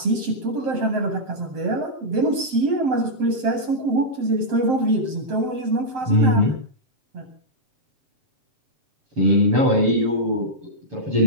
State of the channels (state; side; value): late; left; 7.7 ms